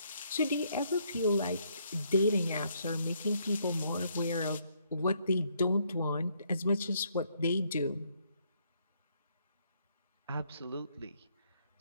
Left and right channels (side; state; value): both; inverted; correlation -0.71